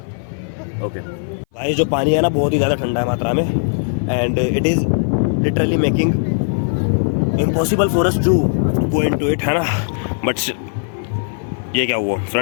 ओके भाई, जो पानी है ना बहुत ही ज़्यादा ठंडा है मात्रा में and it is literally making impossible for us to go into it, है ना. बट ये क्या हुआ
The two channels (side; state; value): right; silent; 58 dB below the other